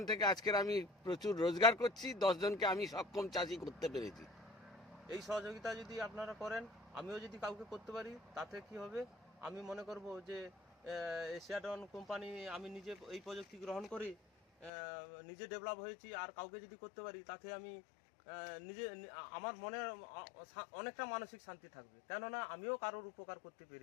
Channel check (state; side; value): drops out; right; at 14.7 s